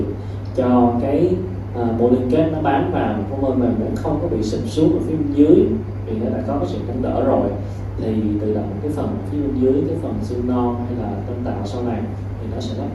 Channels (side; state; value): both; identical; correlation 1.00